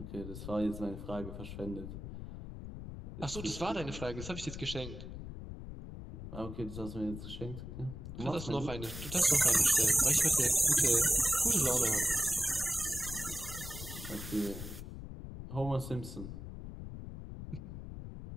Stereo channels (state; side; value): noise; left; rumble, 9 dB below the sound